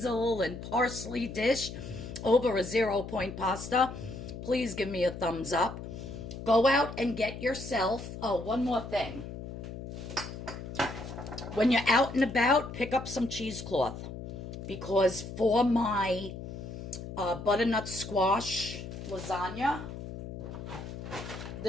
and parsley dish over a 0-point pasta, please give me a thumbs up. Go out and get yourself, oh, one more thing. When you're out and about, pick up some cheesecloth, because for my butternut squash lasagna,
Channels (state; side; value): noise; left; hum, 9 dB below the sound